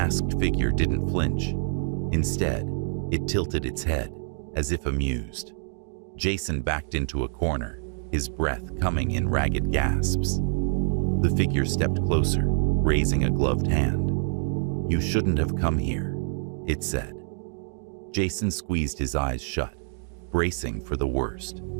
figure didn't flinch. Instead, it tilted its head, as if amused. Jason backed into a corner, his breath coming in ragged gasps. The figure stepped closer, raising a gloved hand. "You shouldn't have come here," it said. Jason squeezed his eyes shut, bracing for the worst.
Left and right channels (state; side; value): silent; left; digital silence